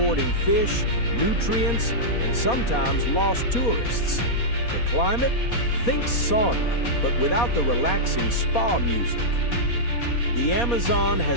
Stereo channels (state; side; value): late; right; 4.2 ms